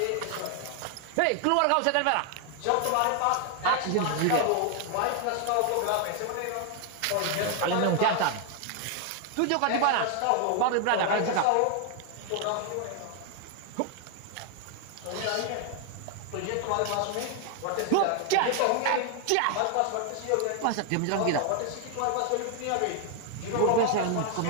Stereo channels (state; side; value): different; both; correlation 0.00